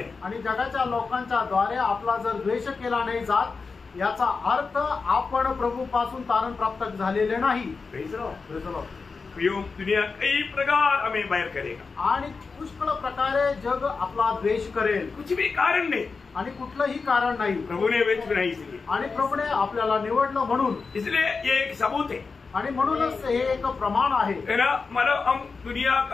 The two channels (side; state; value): right; quieter; 4.6 dB